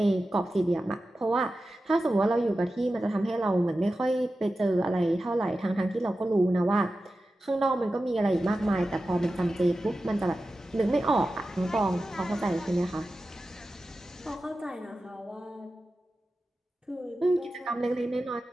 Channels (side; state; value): both; normal; correlation 0.93